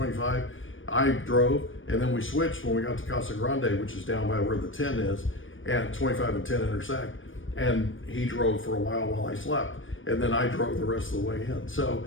I drove, and then we switched when we got to Casa Grande, which is down by where the 10 is, and 25 and 10 intersect. And he drove for a while I slept, and then I drove the rest of the way in. So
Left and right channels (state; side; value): late; right; 0.57 ms